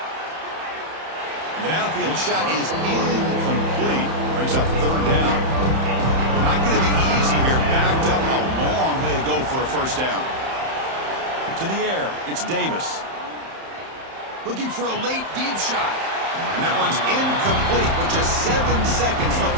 The downfield shot is incomplete. Brings up third down. Not going to be easy here. Backed up a long way to go for a first down. To the air, it's Davis. Looking for a late deep shot. And that one's incomplete with just 7 seconds left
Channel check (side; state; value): left; late; 31 ms